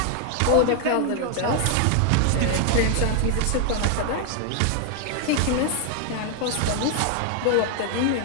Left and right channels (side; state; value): both; different; correlation 0.00